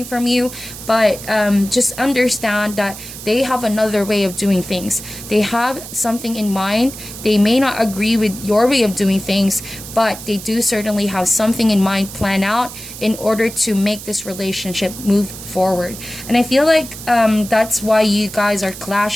from you. But just understand that they have another way of doing things. They have something in mind. They may not agree with your way of doing things, but they do certainly have something in mind planned out in order to make this relationship move forward. And I feel like that's why you guys are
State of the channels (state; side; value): noise; right; hiss, 12 dB below the sound